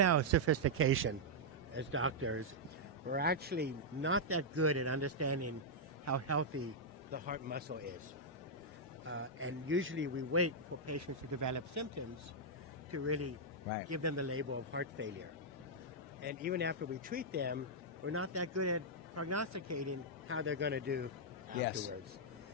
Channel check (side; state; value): both; normal; correlation -0.06